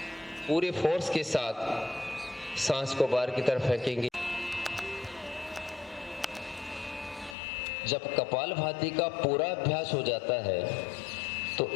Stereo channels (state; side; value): drops out; right; at 7.4 s